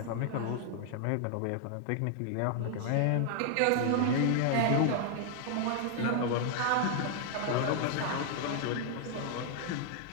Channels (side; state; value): both; different; correlation -0.01